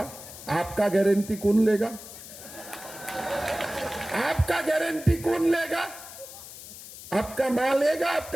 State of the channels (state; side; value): noise; left; hiss, 14 dB below the sound